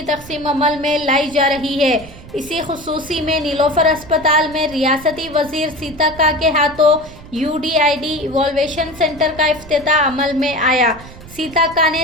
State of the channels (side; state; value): right; noise; rumble, 18 dB below the sound